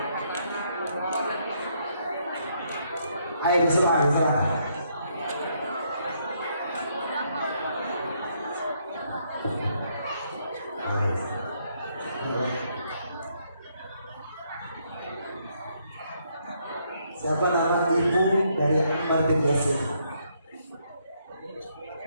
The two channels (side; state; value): both; inverted; correlation -0.73